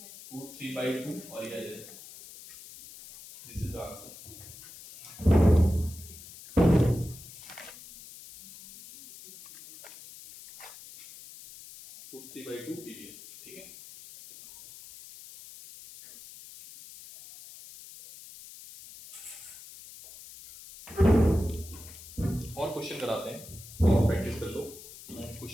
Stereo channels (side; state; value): left; noise; hiss, 17 dB below the sound